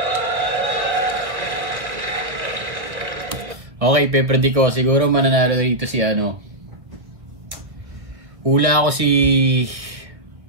Okay, pepredi ko. Siguro mananalo dito si hula ako si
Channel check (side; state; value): left; late; 1.5 ms